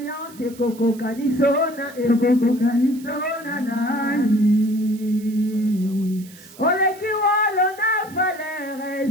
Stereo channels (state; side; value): noise; right; hiss, 21 dB below the sound